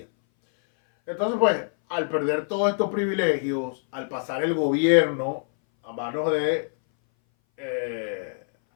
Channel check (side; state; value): right; silent; 59 dB below the other